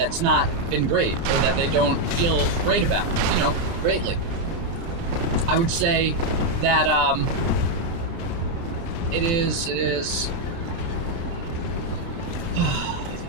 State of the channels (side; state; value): left; late; 30 ms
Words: not been great or that they don't feel great about, greatly. I would say that it is